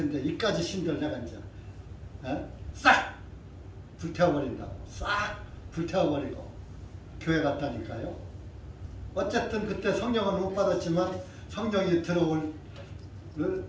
이까지 신들 내가 이제 싹 불태워버린다고. 싹 불태워버리고 교회 갔다니까요. 어쨌든 그때 성령은 못 받았지만 성령이 들어올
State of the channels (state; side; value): identical; both; correlation 1.00